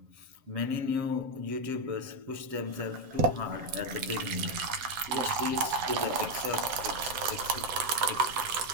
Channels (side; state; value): left; late; 7.6 ms